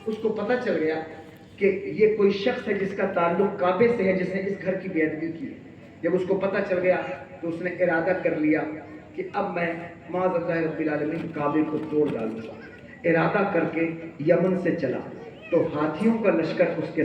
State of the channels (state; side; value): identical; both; correlation 1.00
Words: اس کو پتہ چل گیا کہ یہ کوئی شخص ہے جس کا تعلق کعبے سے ہے، جس نے اس گھر کی بے ادبی کی ہے۔ جب اس کو پتہ چل گیا تو اس نے ارادہ کر لیا کہ اب میں معاذ اللہ رب العالمین کعبے کو توڑ ڈالوں گا۔ ارادہ کر کے یمن سے چلا تو ہاتھیوں کا لشکر اس کے